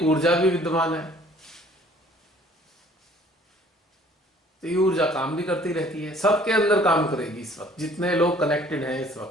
ऊर्जा भी विद्यमान है, तो ये ऊर्जा काम भी करती रहती है, सबके अंदर काम करेगी इस वक्त जितने लोग कनेक्टेड हैं इस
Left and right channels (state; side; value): normal; both; correlation 0.55